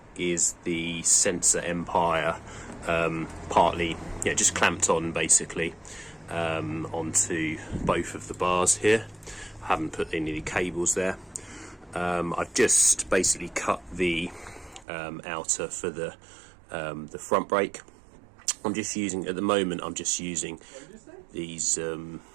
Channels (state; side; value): drops out; left; at 14.9 s